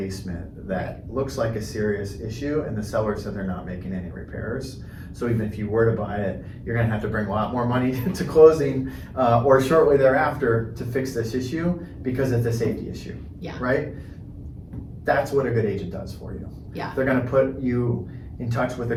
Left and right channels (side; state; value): both; identical; correlation 1.00